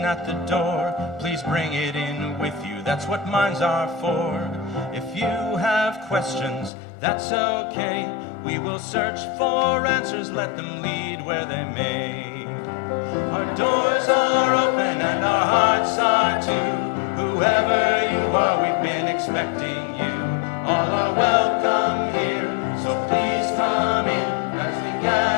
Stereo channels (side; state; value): right; drops out; at 6.7 s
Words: at the door. Please bring it in with you, that's what minds are for. If you have questions, that's okay. We will search for answers, let them lead where they may. Our doors are open and our hearts are too. Whoever you are, we've been expecting you. All are welcome here, so please come in. As we